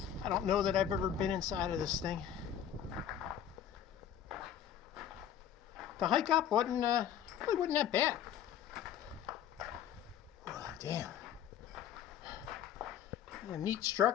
I don't know that I've ever been inside of this thing. The hike up really wasn't that bad. Oh, damn. A neat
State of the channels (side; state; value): right; quieter; 9.7 dB